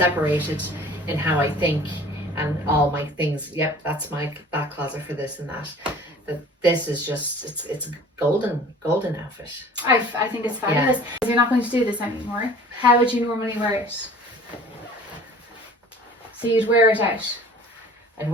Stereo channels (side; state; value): both; normal; correlation 0.47